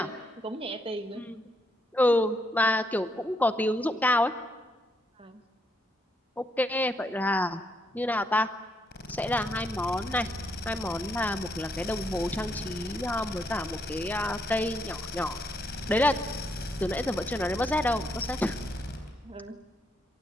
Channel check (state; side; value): normal; both; correlation 0.76